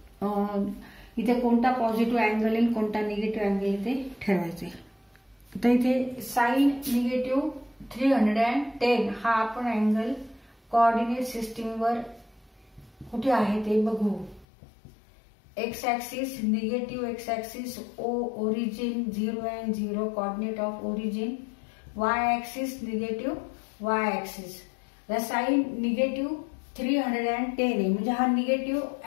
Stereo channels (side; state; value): right; drops out; at 14.5 s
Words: इथे कोणता पॉझिटिव्ह अँगल येईल कोणता निगेटिव्ह अँगल येईल ते ठरवायचे. तर इथे साइन निगेटिव्ह 310 हा आपण अँगल कोऑर्डिनेट सिस्टीम वर कुठे आहे ते बघू. X axis negative x axis origin 0 and 0 coordinate of origin. Y axis negative y axis. Sine negative 310 आहे म्हणजे हा निगेटिव्ह